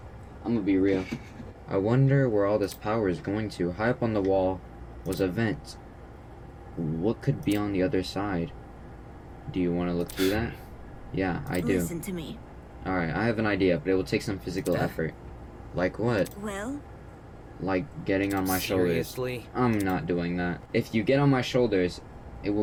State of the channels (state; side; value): identical; both; correlation 1.00